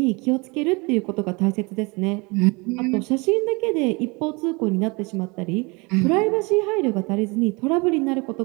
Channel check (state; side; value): quieter; left; 27.6 dB